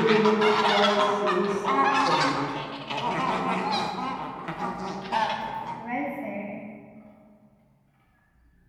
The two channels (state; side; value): identical; both; correlation 1.00